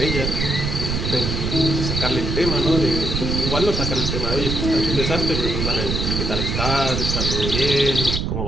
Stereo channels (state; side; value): noise; right; rumble, 1 dB below the sound